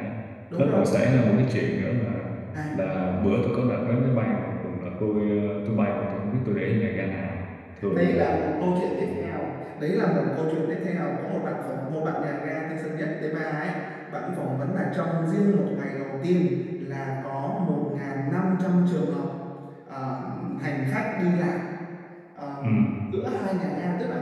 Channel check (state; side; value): identical; both; correlation 1.00